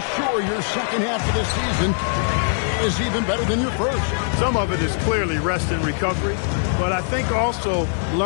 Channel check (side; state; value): right; silent; 65 dB below the other